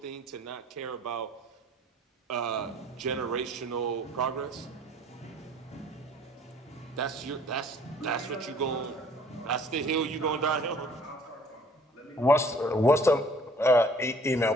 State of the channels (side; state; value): both; normal; correlation 0.55